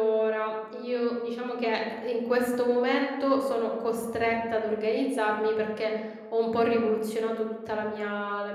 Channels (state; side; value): identical; both; correlation 1.00